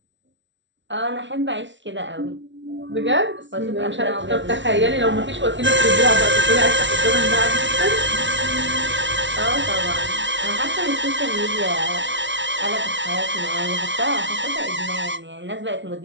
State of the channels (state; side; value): late; left; 0.54 ms